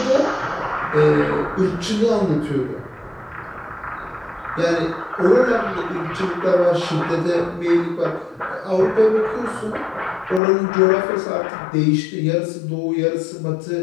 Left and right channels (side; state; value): right; drops out; at 10.4 s